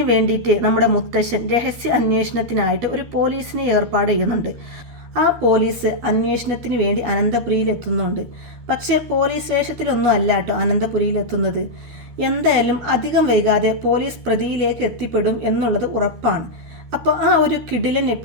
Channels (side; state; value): left; late; 13 ms